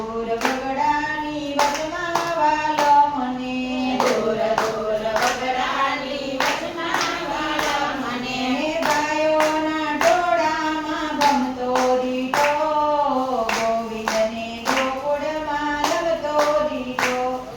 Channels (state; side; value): identical; both; correlation 1.00